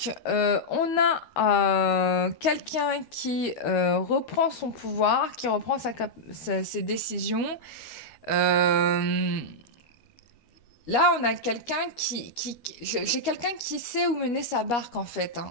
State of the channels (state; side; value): late; right; 13 ms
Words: on a quelqu'un qui reprend son pouvoir, qui reprend ses décisions. Euh, Là, on a quelqu'un j'ai quelqu'un qui sait où mener sa barque, en fait,